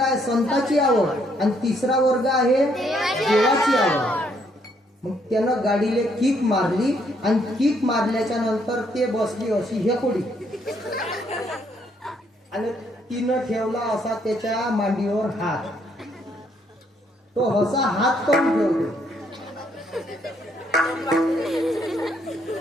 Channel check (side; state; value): both; normal; correlation 0.70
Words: संताची आवड, आणि तिसरा वर्ग आहे देवाची आवड. मग त्यानं गाडीले किक मारली आणि किक मारल्याच्या नंतर ते बसली अशी हेकोडी, आणि तिनं ठेवला असा त्याच्या मांडीवर हात. तो असा हात करून ठेवतो.